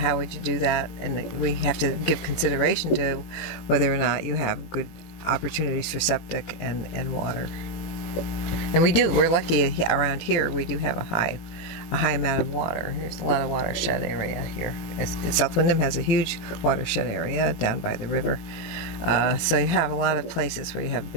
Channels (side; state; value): right; late; 18 ms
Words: would you do that? And we have to give consideration to whether or not you have good opportunities for septic and water. And we do. We're lucky around here. We do have a high amount of water. There's a lot of watershed area here. South Windham has a huge watershed area down by the river. So you have a lot of places where you have